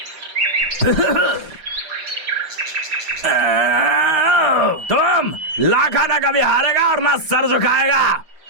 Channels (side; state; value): left; late; 6.1 ms